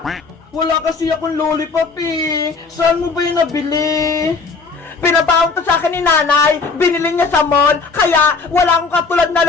Wala kasi akong lollipop eh. Saan mo ba yung nabili? Pinabaon to sa akin ni nanay. Binili niya sa mall. Kaya wala akong katulad na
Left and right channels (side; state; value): right; quieter; 4.5 dB